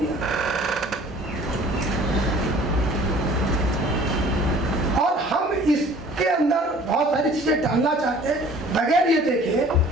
और हम इसके अंदर बहुत सारी चीजें डालना चाहते हैं बगैर ये देखे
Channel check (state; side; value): normal; both; correlation 0.50